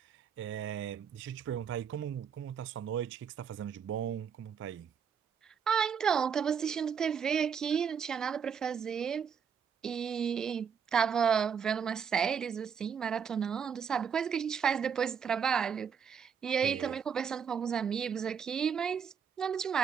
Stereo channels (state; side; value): quieter; left; 7.1 dB